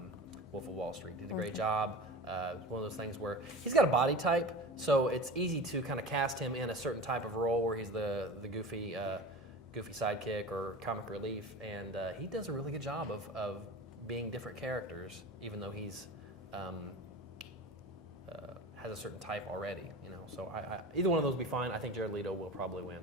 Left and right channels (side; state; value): both; normal; correlation 0.33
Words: Wolf of Wall Street. Did a great job. One of those things where he's got a body type, so it's easy to kind of cast him in a certain type of role where he's the goofy sidekick or comic relief, and he does a really good job of being different characters, even though he's has a certain type already, So either one of those would be fine. I think Jared Leto will probably win.